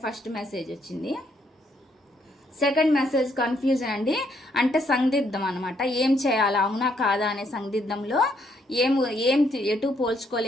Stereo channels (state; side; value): normal; both; correlation 0.72